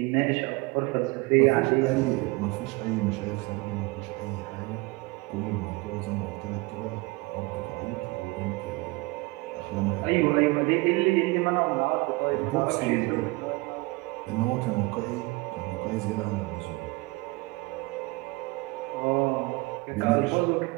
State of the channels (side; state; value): left; quieter; 24.1 dB